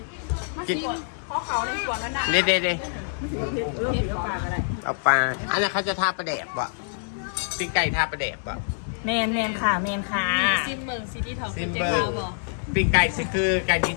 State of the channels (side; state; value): right; silent; digital silence